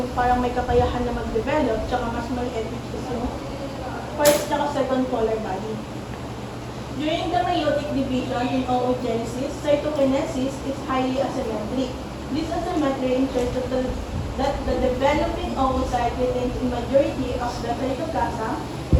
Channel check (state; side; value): identical; both; correlation 1.00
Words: parang may kakayahan na mag-develop, tsaka mas maliit, which is yung first tsaka second polar body. During the meiotic division in oogenesis, cytokinesis is highly asymmetric. This asymmetry ensures that the developing oocyte retains the majority of the cytoplasm,